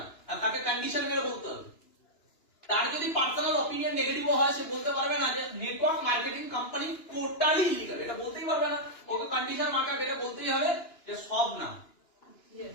আর তাকে কন্ডিশন মেরে বলতে হবে। তার যদি পার্সোনাল অপিনিয়ন নেগেটিভ হয়, সে বলতে পারবে না যে network marketing company totally illegal, এটা বলতেই পারবে না। ওকে কন্ডিশন মার্কা এটা বলতেই হবে যে সব না।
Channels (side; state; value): right; late; 2.9 ms